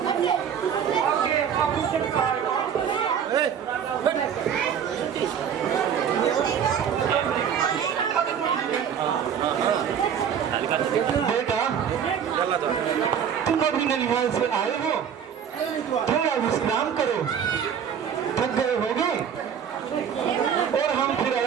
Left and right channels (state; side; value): quieter; left; 8.1 dB